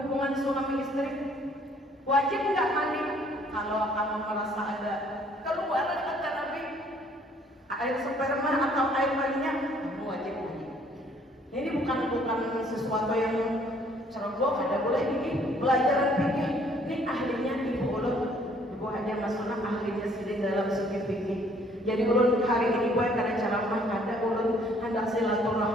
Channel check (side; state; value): both; normal; correlation 0.61